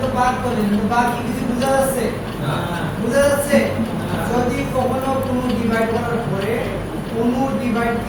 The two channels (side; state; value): both; identical; correlation 1.00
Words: তো বাদ করলেন কিন্তু বাকি কিছু বোঝা যাচ্ছে না বোঝা যাচ্ছে যদি কখনো কোনো ডিভাইড করার পরে কোনো